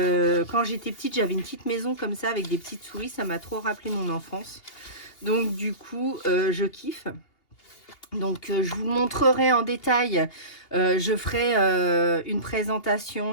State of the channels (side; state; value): right; late; 2.8 ms